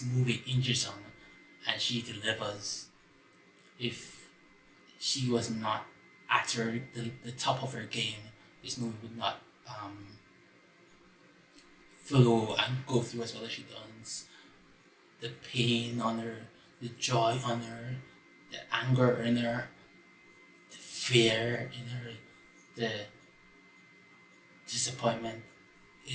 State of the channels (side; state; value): both; identical; correlation 1.00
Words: movie hinges on, and she delivers. If she was not at the top of her game, this movie would not flow and go through as well as she does. The pain on her, the joy on her, the anger in her, the fear in her, the disappointment.